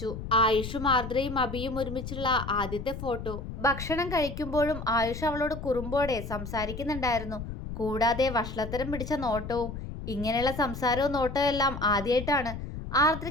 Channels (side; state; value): left; noise; rumble, 8 dB below the sound